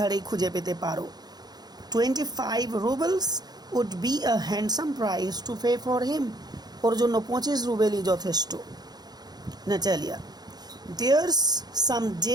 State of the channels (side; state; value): left; late; 0.19 ms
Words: খুঁজে পেতে পারো। 25 rubles would be a handsome price to pay for him, ওর জন্য 25 রুবেলই যথেষ্ট। Natalia, there's some